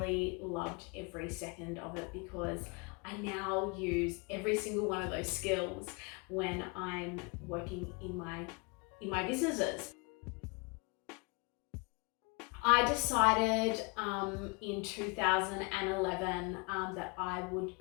loved every second of it, because I now use every single one of those skills when I'm working in my businesses. I decided in 2011 that I would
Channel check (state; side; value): quieter; right; 30.3 dB